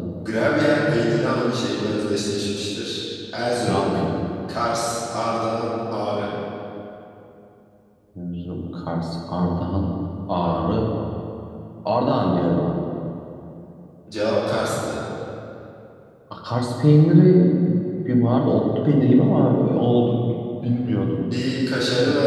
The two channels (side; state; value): both; identical; correlation 1.00